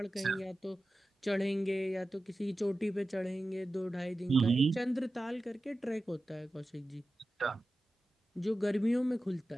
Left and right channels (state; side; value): normal; both; correlation 0.94